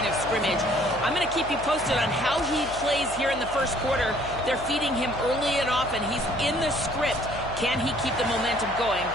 of scrimmage. I'm going to keep you posted on how he plays here in the first quarter. They're feeding him early and often. He's in the script. Can he keep the momentum going?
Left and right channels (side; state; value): left; noise; hum, 14 dB below the sound